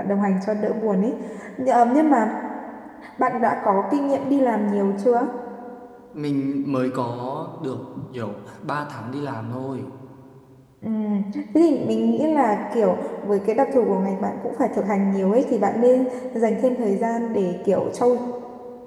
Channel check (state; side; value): identical; both; correlation 1.00